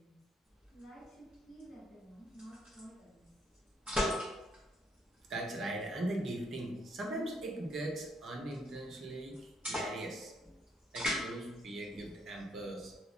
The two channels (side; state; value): both; normal; correlation 0.71